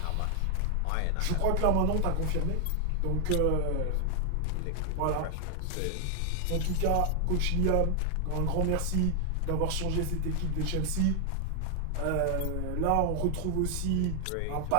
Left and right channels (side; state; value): both; different; correlation 0.00